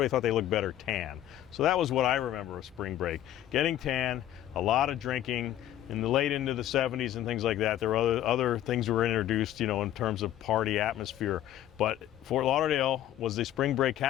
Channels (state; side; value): quieter; right; 12.3 dB